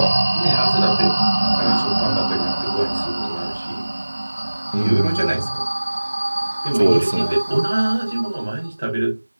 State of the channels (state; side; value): inverted; both; correlation -1.00